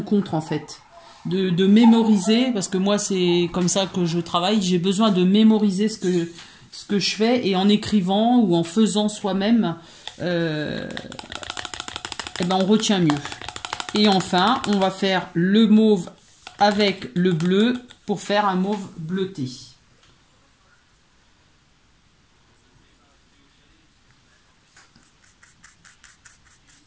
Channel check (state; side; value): identical; both; correlation 1.00